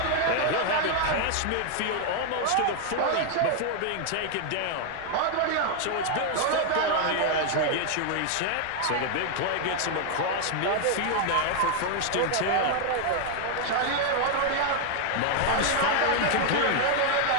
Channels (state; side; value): different; both; correlation 0.00